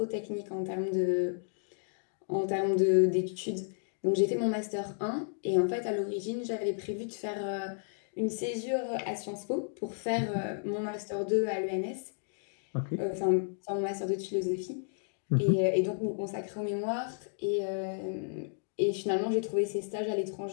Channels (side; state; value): right; silent; digital silence